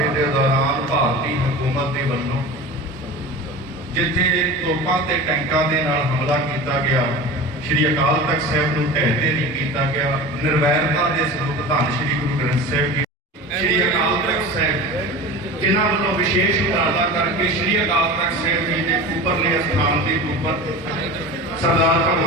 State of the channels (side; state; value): both; normal; correlation 0.33